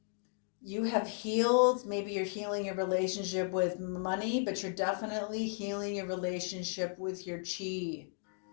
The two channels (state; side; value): silent; right; 55 dB below the other